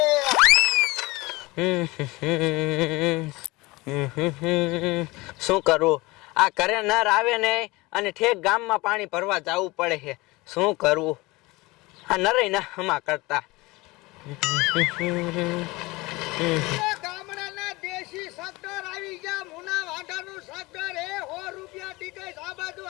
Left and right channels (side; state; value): right; quieter; 22.4 dB